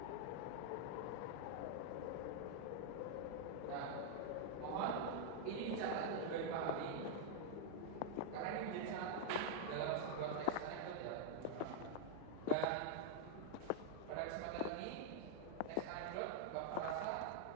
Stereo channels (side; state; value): both; different; correlation 0.00